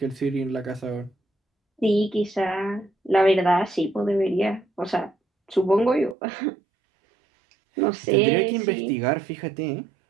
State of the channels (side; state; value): left; drops out; at 6.2 s